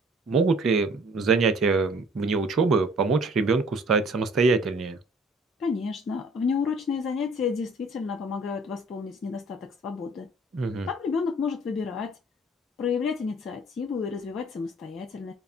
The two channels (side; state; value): both; normal; correlation 0.54